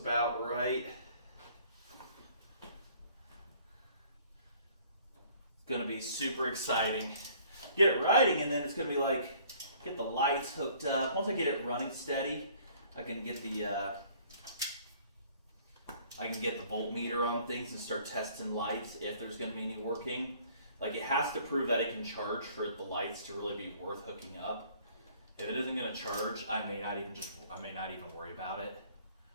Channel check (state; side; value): inverted; both; correlation -0.57